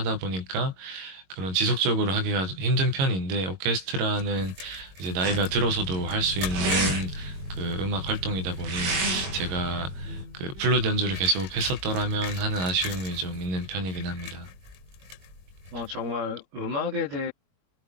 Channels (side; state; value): left; late; 21 ms